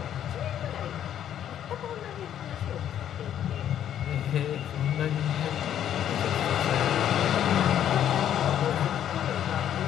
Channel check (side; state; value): right; quieter; 10.3 dB